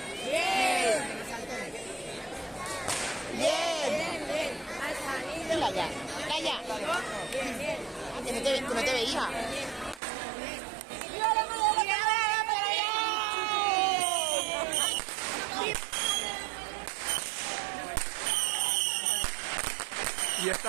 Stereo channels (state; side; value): drops out; left; at 10.0 s